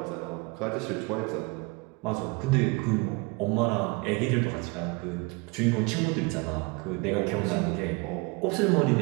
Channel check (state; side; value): quieter; left; 27.7 dB